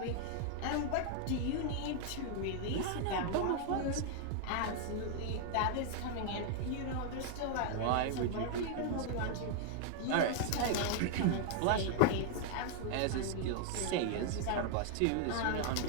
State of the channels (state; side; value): different; both; correlation 0.00